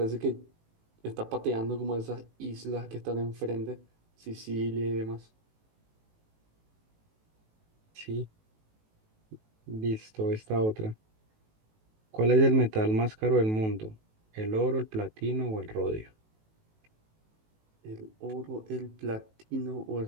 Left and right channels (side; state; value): left; late; 18 ms